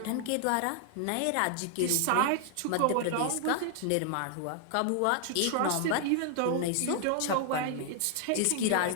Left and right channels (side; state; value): both; different; correlation 0.00